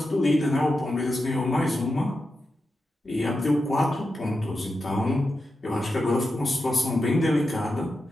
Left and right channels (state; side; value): normal; both; correlation 0.89